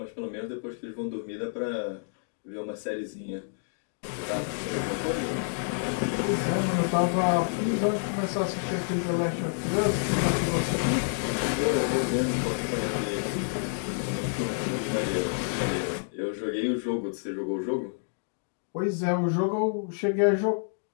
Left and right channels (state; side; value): silent; right; digital silence